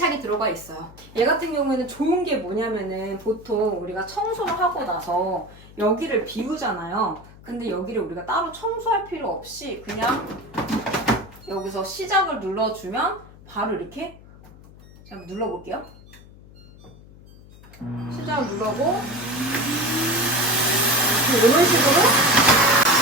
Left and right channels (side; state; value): left; noise; hum, 21 dB below the sound